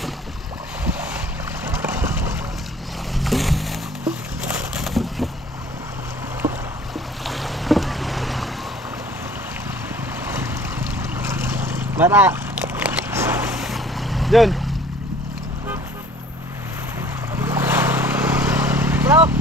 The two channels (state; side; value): normal; both; correlation 0.51